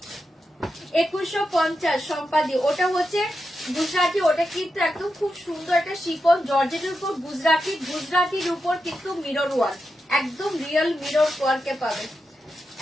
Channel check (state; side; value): normal; both; correlation 0.88